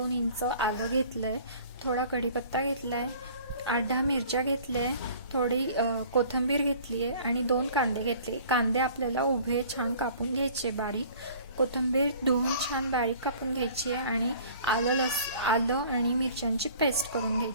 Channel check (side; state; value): both; inverted; correlation -0.49